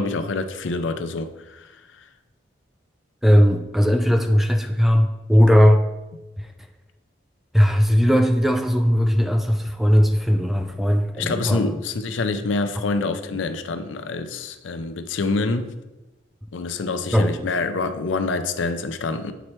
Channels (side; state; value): both; normal; correlation 0.87